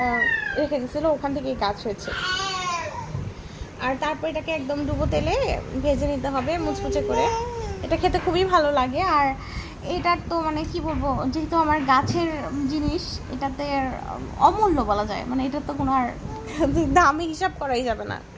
রেখে গেছিলো, ওখান থেকেই গাছ হয়েছে। আর তারপর এটাকে একদম ডুবো তেলে ভেজে নিতে হবে মুচমুচে করে। এটা খেতে খুবই ভালো লাগে। আর এটার তো মানে কি বলবো, যেহেতু আমার গাছের জিনিস, এটাতে অমূল্য বলা যায়, মানে এটার তো কোনো আর দামে হিসাব করাই যাবে না,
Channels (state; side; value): identical; both; correlation 1.00